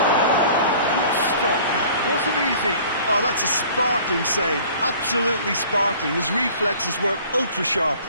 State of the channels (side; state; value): both; inverted; correlation -0.49